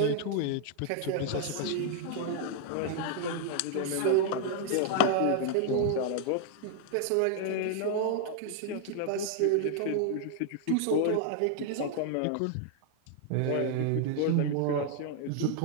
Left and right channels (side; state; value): both; different; correlation 0.00